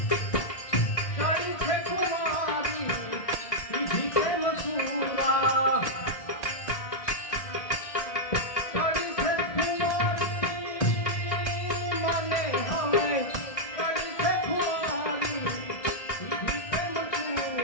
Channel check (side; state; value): right; late; 1.8 ms